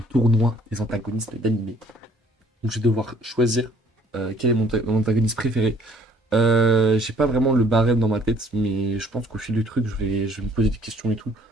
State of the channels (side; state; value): both; normal; correlation 0.58